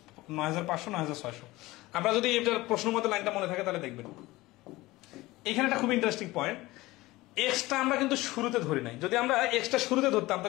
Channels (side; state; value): right; quieter; 19.4 dB